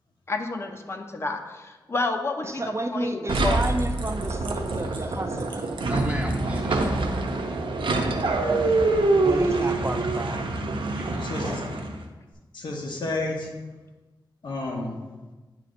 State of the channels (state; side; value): normal; both; correlation 0.74